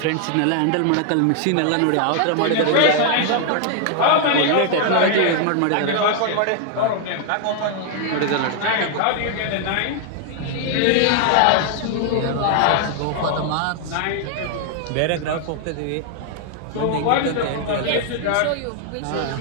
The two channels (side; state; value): both; different; correlation 0.00